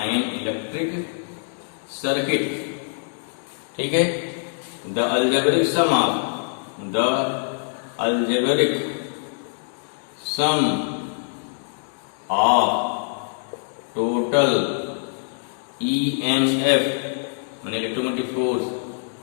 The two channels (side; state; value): right; silent; digital silence